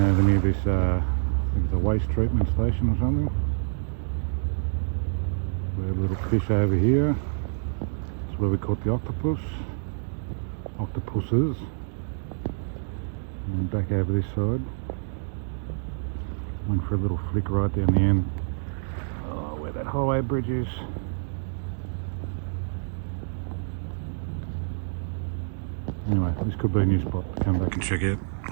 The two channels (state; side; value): silent; left; digital silence